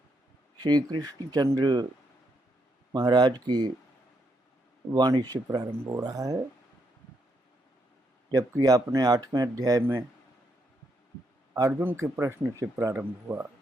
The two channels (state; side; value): normal; both; correlation 0.77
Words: श्री कृष्णचंद्र महाराज की वाणी से प्रारंभ हो रहा है, जबकि आपने 8वें अध्याय में अर्जुन के प्रश्न से प्रारंभ हुआ